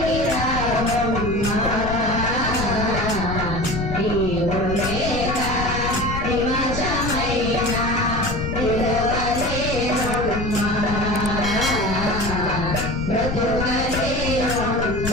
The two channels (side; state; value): left; noise; rumble, 5 dB below the sound